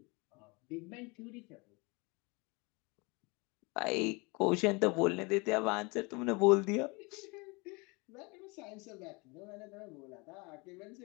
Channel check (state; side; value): quieter; right; 28.0 dB